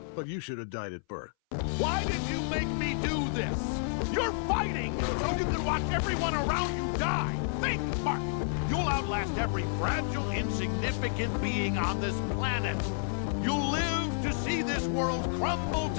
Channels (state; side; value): silent; right; 58 dB below the other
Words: But you should have died at birth. Why did you make me do this? You're fighting so you can watch everyone around you die. Think, Mark. You'll outlast every fragile, insignificant being on this planet. You'll live to see this world crumble